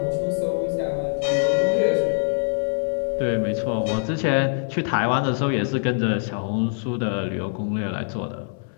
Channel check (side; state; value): right; silent; 63 dB below the other